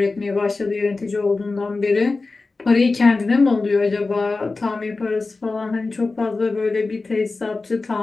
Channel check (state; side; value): quieter; right; 3.7 dB